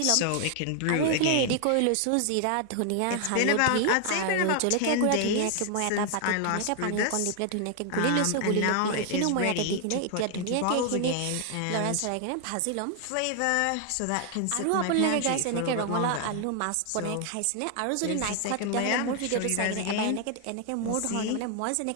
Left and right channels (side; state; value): both; different; correlation 0.00